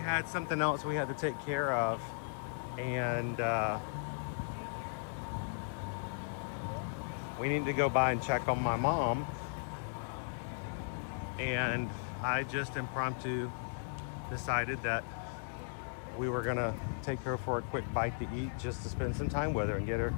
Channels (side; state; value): right; silent; digital silence